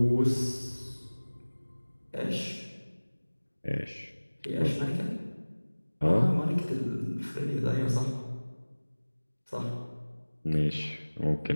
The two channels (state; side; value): inverted; both; correlation -1.00